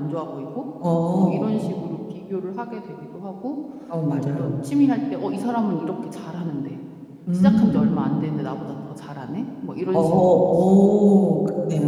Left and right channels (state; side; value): identical; both; correlation 1.00